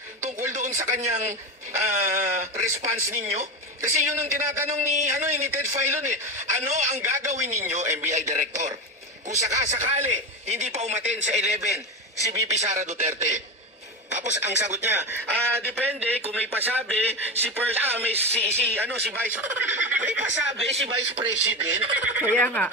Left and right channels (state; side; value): normal; both; correlation 0.19